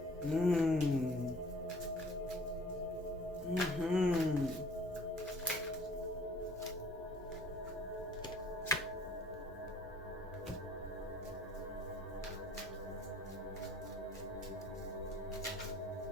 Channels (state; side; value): normal; both; correlation 0.54